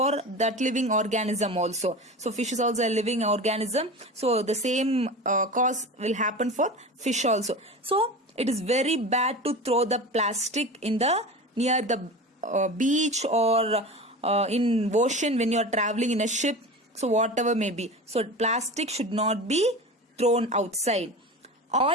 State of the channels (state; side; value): normal; both; correlation 0.31